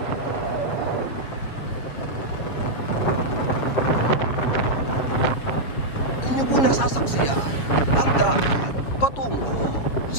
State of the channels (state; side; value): late; right; 7.4 ms